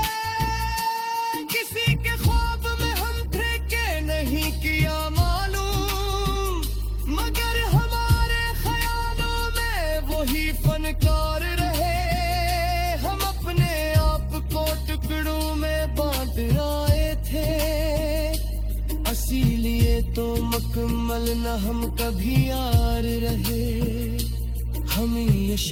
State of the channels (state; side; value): identical; both; correlation 1.00